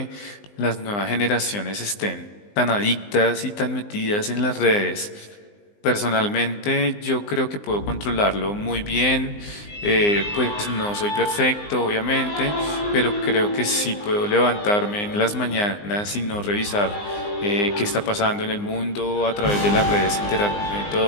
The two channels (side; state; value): right; late; 19 ms